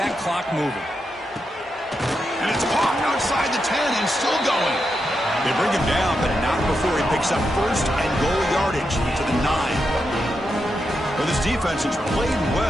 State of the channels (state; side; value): normal; both; correlation 0.85